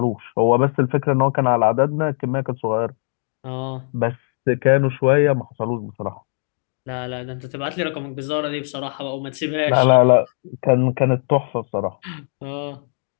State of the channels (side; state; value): right; silent; digital silence